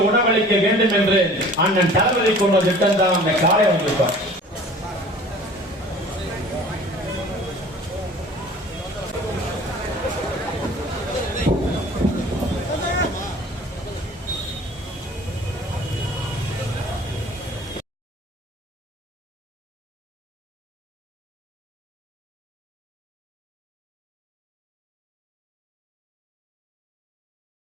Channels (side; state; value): both; normal; correlation 0.47